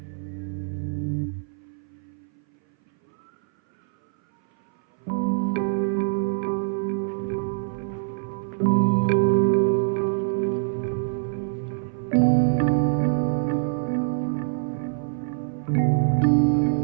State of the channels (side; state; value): left; silent; 59 dB below the other